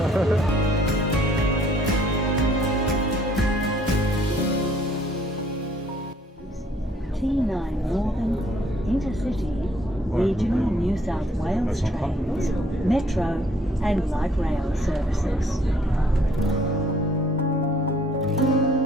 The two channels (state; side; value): normal; both; correlation 0.62